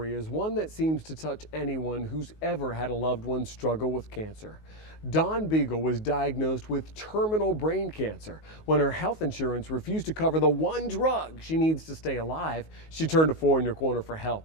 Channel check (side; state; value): right; late; 19 ms